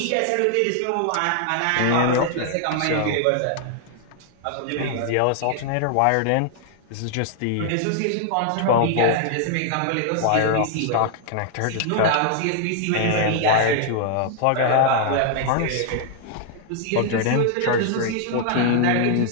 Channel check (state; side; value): different; both; correlation 0.00